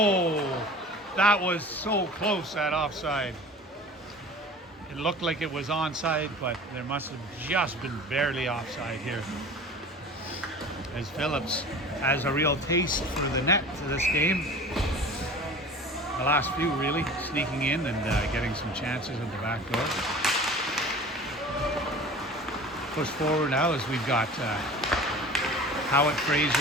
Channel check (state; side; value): normal; both; correlation 0.40